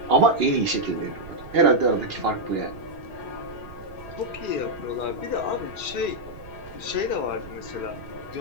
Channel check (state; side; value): noise; right; rumble, 17 dB below the sound